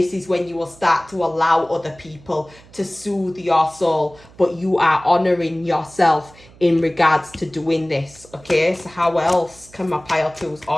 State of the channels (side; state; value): right; noise; hum, 24 dB below the sound